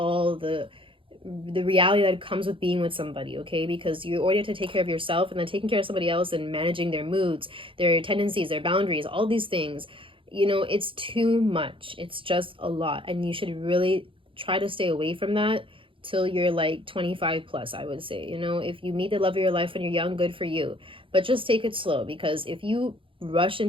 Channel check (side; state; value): left; late; 0.25 ms